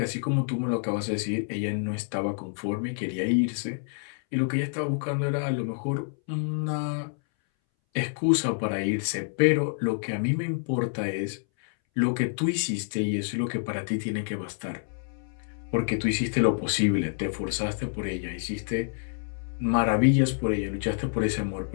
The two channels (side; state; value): right; silent; 60 dB below the other